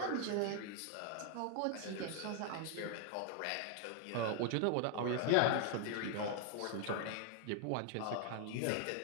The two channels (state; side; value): different; both; correlation 0.00